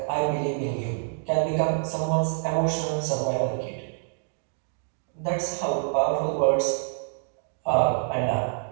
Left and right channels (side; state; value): left; silent; digital silence